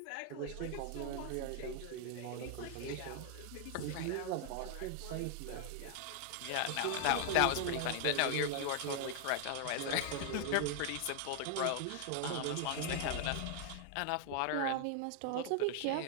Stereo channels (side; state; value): both; different; correlation 0.00